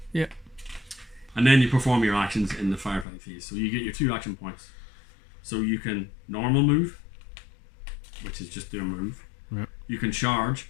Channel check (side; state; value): right; drops out; at 3.1 s